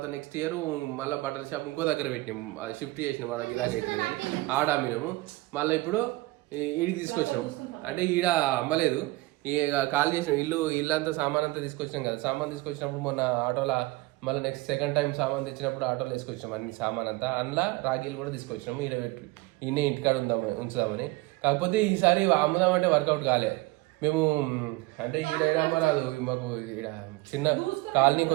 నెక్స్ట్ ఇయర్ మళ్ళీ బట్టల షాప్ ఇంకో దగ్గర పెట్టినాం, షిఫ్ట్ చేసినాం. వాళ్ళకి ఇలాగ అవుతుంది కానీ ఆడ అమ్మినాము. మళ్ళీ ఇప్పుడు ఈడికి తీసుకొచ్చినాం. అంటే ఈడ అమ్మలేదు, కాల్ చేసినాం. ఇల్లంతా సామాన్ అంతా తీసుకొచ్చినాం కదా. సామాన్ తీసుకొచ్చినప్పుడు మొన్న ఆటోలో మళ్ళీ నెక్స్ట్ సెకండ్ టైం సామాన్ తెచ్చినప్పుడు ఆటోలో తీసుకొచ్చినాం అన్ని సామాన్ అంతా. అందులో రాఖీలు కూడా తీసుకొచ్చినాము. ఈడ పెట్టి ఈయనే ఇంటికాడ ఉంచుదామని. కాకపోతే ఈసారి అమ్ముదామంటే వర్కౌట్ కాలే. మేము అంటే ఈడ అమ్మరాదు మాకు. ఈడ చిన్న కాలనీ,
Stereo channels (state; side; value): quieter; left; 21.0 dB